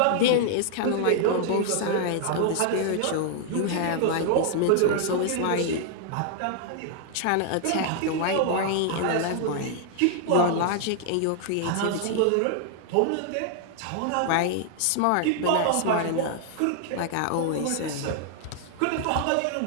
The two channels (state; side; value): different; both; correlation -0.01